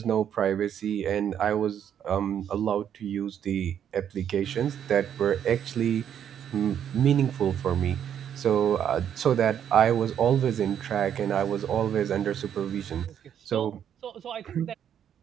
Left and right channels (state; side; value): quieter; left; 9.2 dB